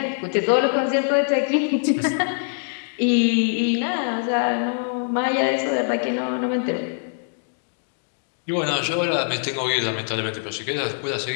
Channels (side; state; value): right; silent; digital silence